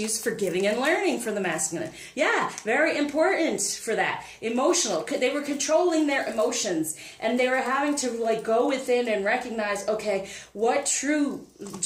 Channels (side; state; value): both; identical; correlation 1.00